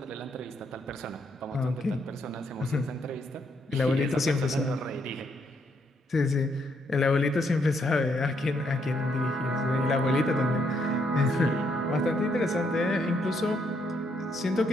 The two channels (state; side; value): normal; both; correlation 0.74